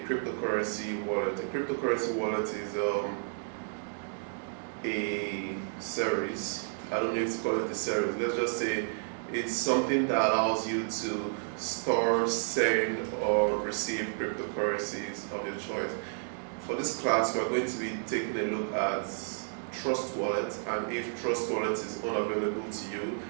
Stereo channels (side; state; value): left; silent; digital silence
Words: cryptocurrency wallet. A cryptocurrency wallet is a series. I don't know if to call it a series. Let's just say it's something that allows you to store, send, or receive cryptocurrencies of your choice. For this class, we're going to be taking a look at Trustworld, and if Trustworld is unavailable to you,